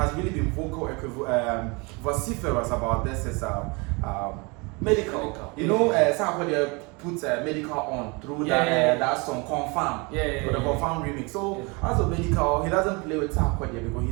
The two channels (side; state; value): left; quieter; 28.5 dB